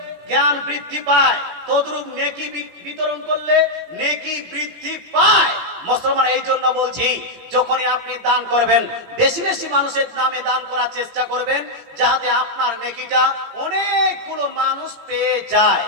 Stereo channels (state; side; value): late; left; 18 ms